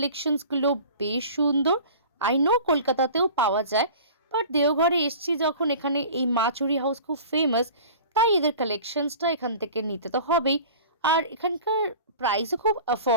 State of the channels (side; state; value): both; inverted; correlation -0.41